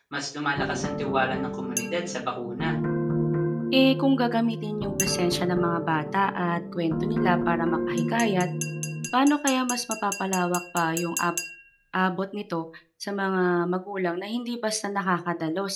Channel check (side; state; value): both; identical; correlation 1.00